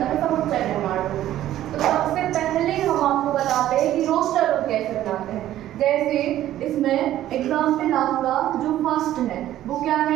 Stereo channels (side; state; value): left; quieter; 13.1 dB